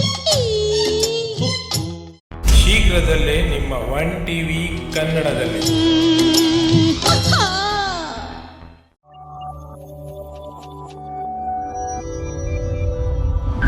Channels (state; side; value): identical; both; correlation 1.00